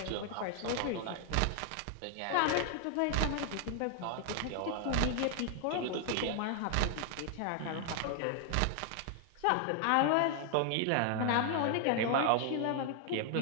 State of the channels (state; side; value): different; both; correlation 0.00